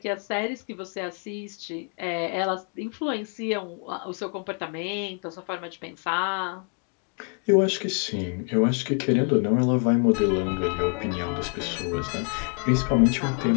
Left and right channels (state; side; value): quieter; right; 37.0 dB